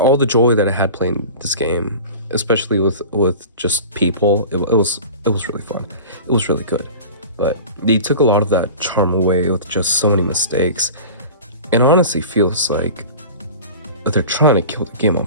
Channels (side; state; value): both; inverted; correlation -0.36